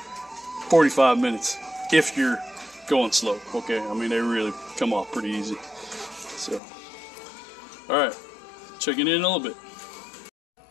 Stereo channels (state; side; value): drops out; right; at 6.6 s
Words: 45 minutes if you're going slow. Okay, I mean, they really come off pretty easy. So, alright, checking in a little bit.